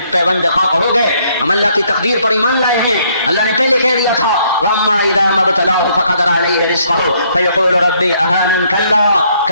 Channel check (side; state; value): both; inverted; correlation -0.67